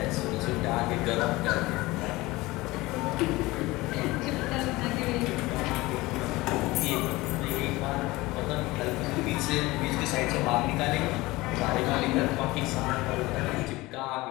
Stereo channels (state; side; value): quieter; right; 20.5 dB